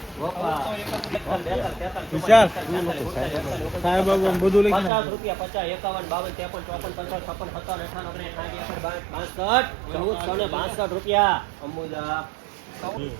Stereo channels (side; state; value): left; drops out; at 4.9 s